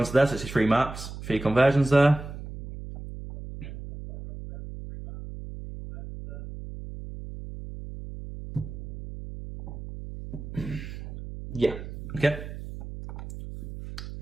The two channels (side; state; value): right; noise; hum, 11 dB below the sound